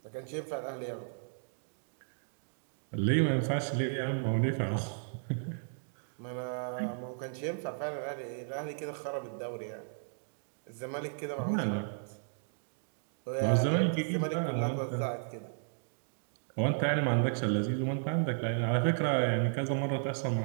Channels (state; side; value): silent; left; digital silence